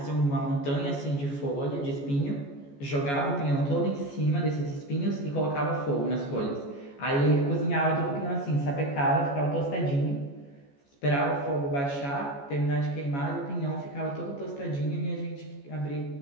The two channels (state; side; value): late; right; 14 ms